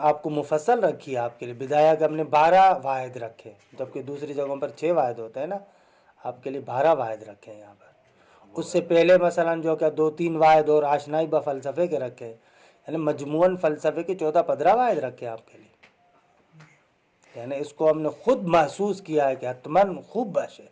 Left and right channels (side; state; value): both; identical; correlation 1.00